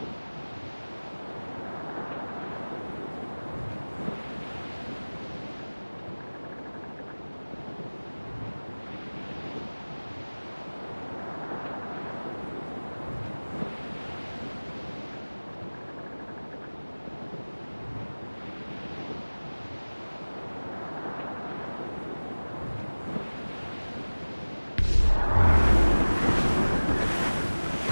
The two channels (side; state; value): both; inverted; correlation -1.00